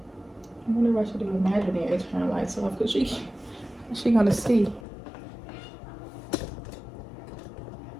I wonder if I should do imaginary turn lights off because she gonna see.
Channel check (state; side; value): drops out; right; at 4.9 s